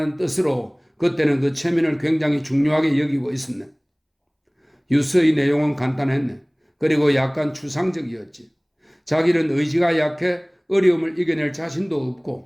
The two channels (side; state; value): both; identical; correlation 1.00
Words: 뜻으로 그때는 그 체면을 굉장히 중요하게 여기고 있었네. 유서의 내용은 간단했네. 그리고 약간 추상적이었지. 자기는 의지가 약해 어려움을 이겨낼 자신도